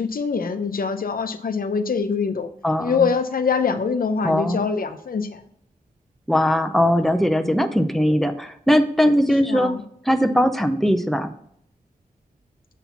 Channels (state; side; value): normal; both; correlation 0.80